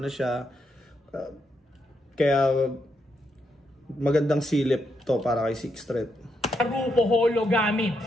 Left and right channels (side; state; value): both; normal; correlation 0.80